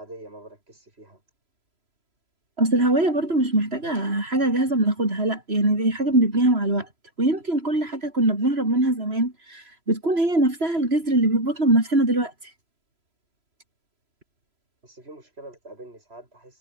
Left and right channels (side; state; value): left; late; 3.0 ms